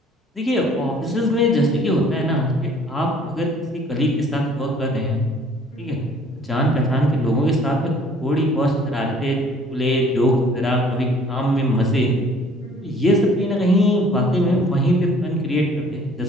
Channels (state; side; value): normal; both; correlation 0.55